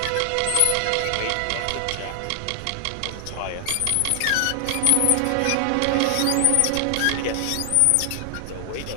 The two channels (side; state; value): both; different; correlation 0.00